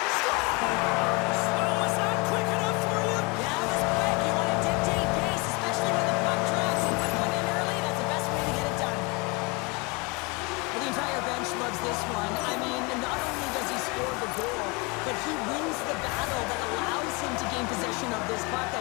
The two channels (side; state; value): right; quieter; 28.0 dB